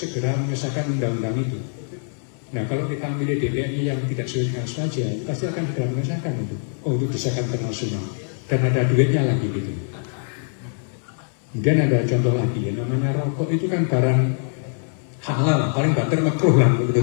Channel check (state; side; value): silent; right; 63 dB below the other